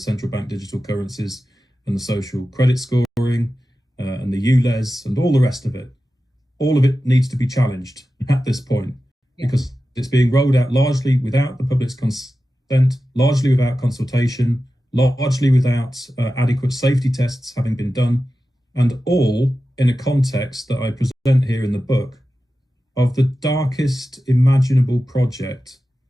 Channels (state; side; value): normal; both; correlation 0.93